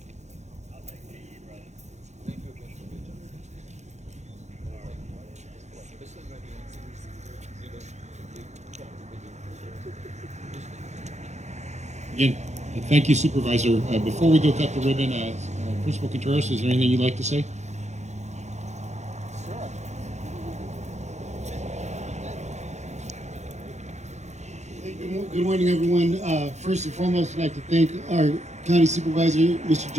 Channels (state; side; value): late; left; 0.33 ms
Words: for your time. This is ready. Again, thank you, Supervisor. Before we go cut the ribbon, Principal Contreras, is there anything you'd like to say? Good morning, everyone. First and foremost, I'd like to thank our County Supervisor, Mr.